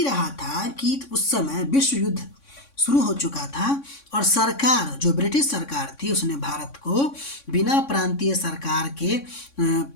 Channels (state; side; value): late; right; 3.6 ms